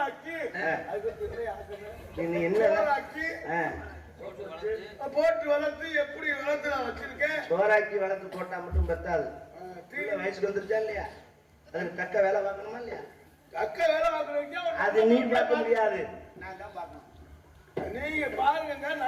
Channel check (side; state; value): both; identical; correlation 1.00